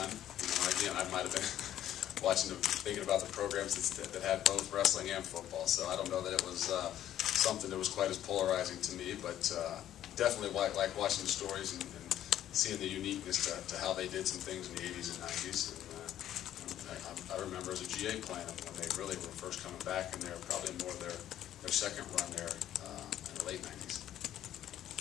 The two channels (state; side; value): quieter; right; 11.8 dB